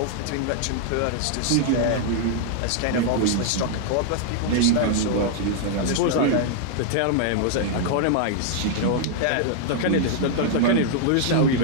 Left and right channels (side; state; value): both; different; correlation 0.00